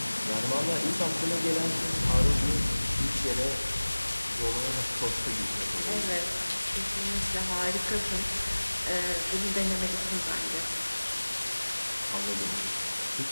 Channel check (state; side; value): inverted; both; correlation -1.00